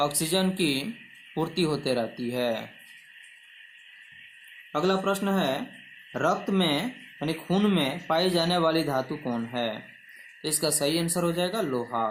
की पूर्ति होते रहती है। अगला प्रश्न है, रक्त में यानी खून में पाई जाने वाली धातु कौन है? तो इसका सही आंसर हो जाएगा लोहा।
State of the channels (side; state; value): both; identical; correlation 1.00